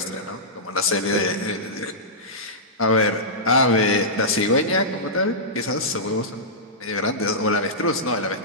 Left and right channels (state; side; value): normal; both; correlation -0.14